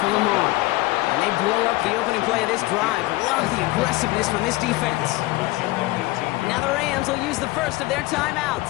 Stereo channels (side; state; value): right; quieter; 20.2 dB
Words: for Lamar. And they blow up the opening play of this drive. Love the aggressiveness from this defense. Now the Rams will use the first of their